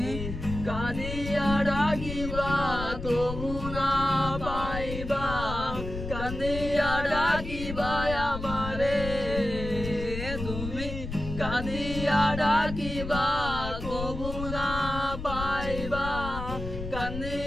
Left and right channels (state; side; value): noise; left; rumble, 7 dB below the sound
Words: কাঁদিয়া ডাকিবা তবু না পাইবা কাঁদিয়া ডাকিবা আমারে তুমি কাঁদিয়া ডাকিবা তবু না পাইবা